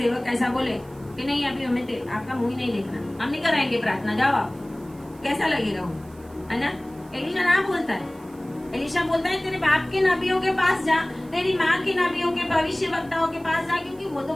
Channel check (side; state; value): right; noise; hiss, 27 dB below the sound